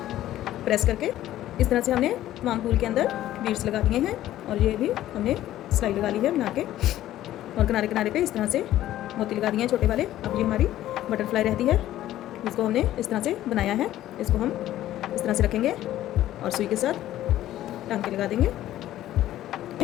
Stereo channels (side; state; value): right; quieter; 13.6 dB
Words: प्रेस करके इस तरह से हमने तमाम फूल के अंदर बीड्स लगा दिए हैं और ये भी हमने सिलाई लगा ली है बना के और किनारे किनारे पे इस तरह से मोती लगा दिए हैं छोटे वाले। अब ये हमारी बटरफ्लाई रहती है जिसको हमने इस तरह से बनाया है। इसको हम इस तरह से रखेंगे और सुई के साथ टांके लगा देंगे।